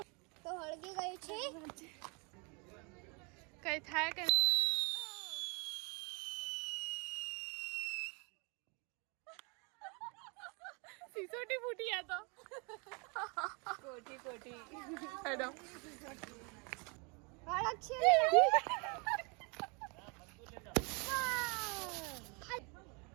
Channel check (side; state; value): left; quieter; 32.4 dB